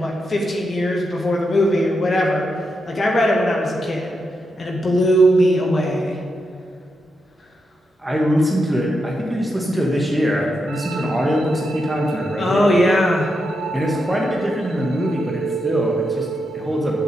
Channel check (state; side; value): normal; both; correlation 0.84